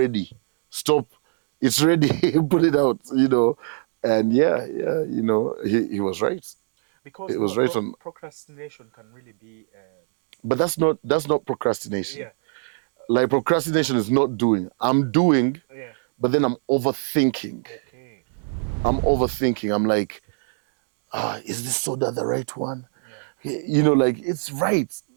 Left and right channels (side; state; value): left; silent; digital silence